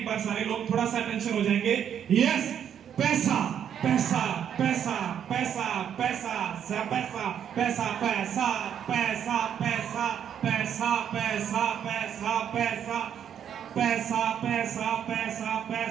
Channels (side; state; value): left; quieter; 9.0 dB